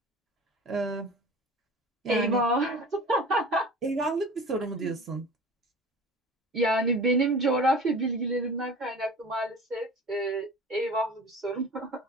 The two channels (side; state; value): both; normal; correlation 0.39